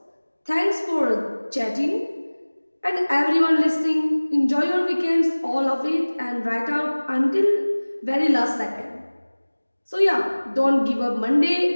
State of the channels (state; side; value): inverted; both; correlation -1.00